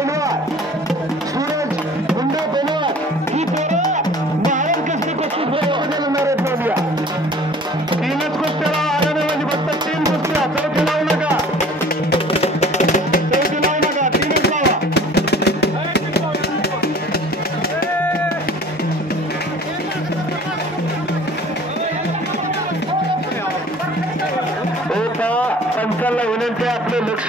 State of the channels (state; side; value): normal; both; correlation 0.48